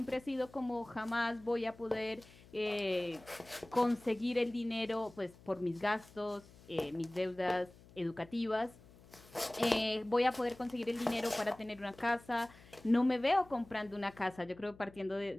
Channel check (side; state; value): left; noise; hum, 23 dB below the sound